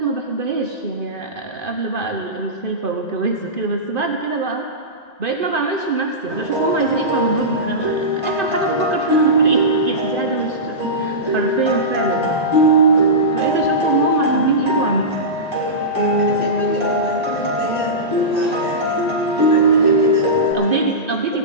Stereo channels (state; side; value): late; right; 1.9 ms